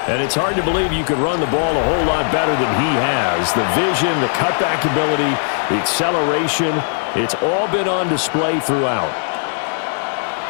And it's hard to believe you could run the ball a whole lot better than he has. The vision, the cutback ability, the acceleration, it's all been on display throughout.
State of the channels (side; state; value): right; silent; 67 dB below the other